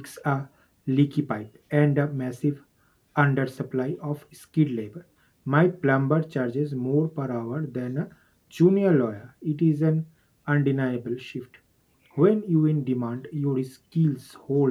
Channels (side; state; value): both; identical; correlation 1.00